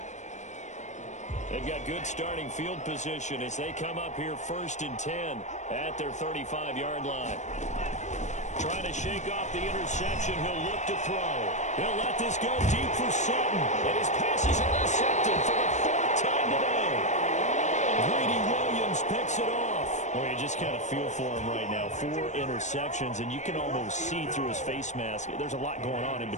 They've got good starting field position as they come up here 1st and 10 at their 35-yard line. Trying to shake off the interception. He'll look to throw. He'll let this go deep for Sutton. And his pass is intercepted for the 4th time today. Greedy Williams picks it off. Well, you just kind of feel for him right now. 4 interceptions, and you can almost see through his face mask. There's a lot going on in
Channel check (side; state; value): right; late; 0.34 ms